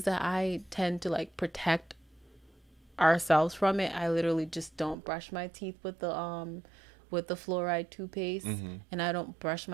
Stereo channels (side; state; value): left; drops out; at 5.0 s